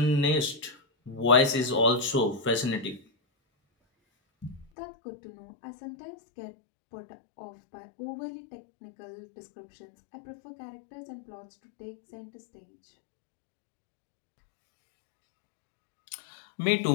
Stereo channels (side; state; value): right; drops out; at 4.7 s